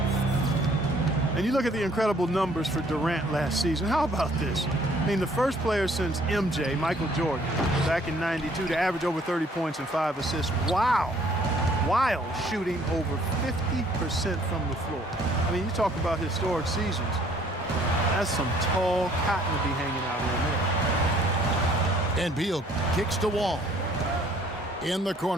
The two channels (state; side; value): normal; both; correlation 0.60